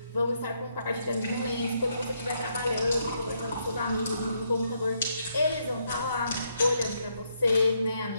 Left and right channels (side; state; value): both; inverted; correlation -0.76